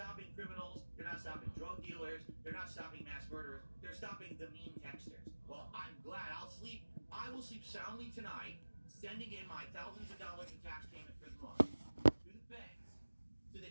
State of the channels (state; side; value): inverted; both; correlation -1.00